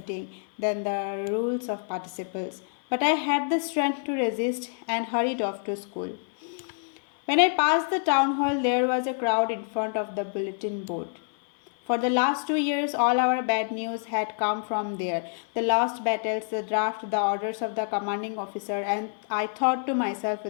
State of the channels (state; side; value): silent; right; 60 dB below the other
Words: than the rules of participles. But I had the strength to resist and hurried off to school. When I passed the town hall, there was a crowd in front of the bulletin board. For the last 2 years, all our bad news had come from there. The lost battles, the draft, the orders of the commanding officer, and I thought to myself